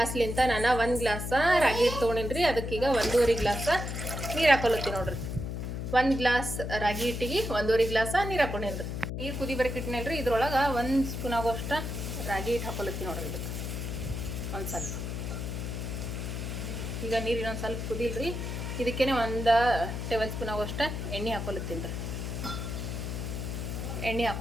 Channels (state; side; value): noise; left; hum, 4 dB below the sound